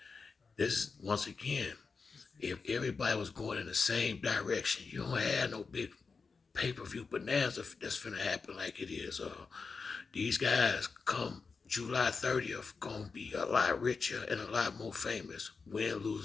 this, once again, if everybody was going in the same direction, you don't have no big pay-per-view bonanza that's finna happen like it is. These guys come July 30th gonna be a lot richer and a lot more famous. Win,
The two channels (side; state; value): right; quieter; 4.8 dB